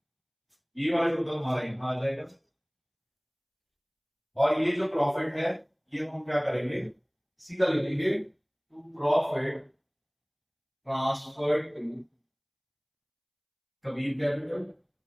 ये वाला टोटल हमारा यहाँ आ जाएगा, और ये जो प्रॉफिट है ये हम क्या करेंगे सीधा लिखेंगे to profit transfer to Kabir capital,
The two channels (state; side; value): identical; both; correlation 1.00